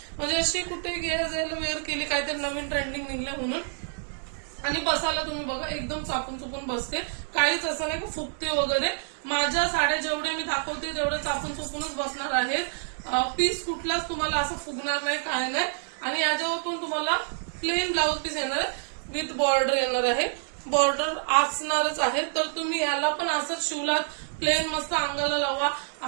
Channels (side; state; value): left; silent; 57 dB below the other